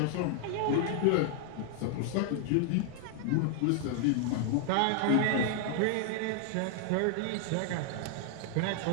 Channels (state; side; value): different; both; correlation 0.00